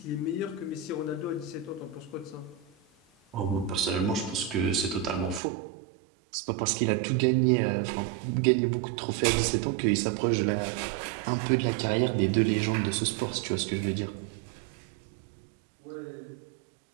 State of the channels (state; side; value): drops out; left; at 5.4 s